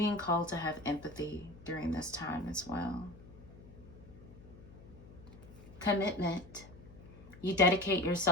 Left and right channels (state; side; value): noise; left; hum, 19 dB below the sound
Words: called to have empathy during this time as well. Commitment. You dedicate